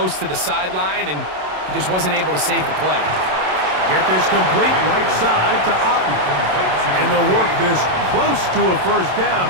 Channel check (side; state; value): left; late; 27 ms